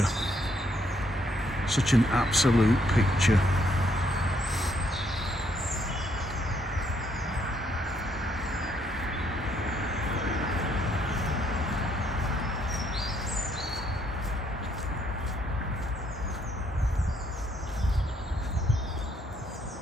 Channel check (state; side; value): normal; both; correlation 0.71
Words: such an absolute picture.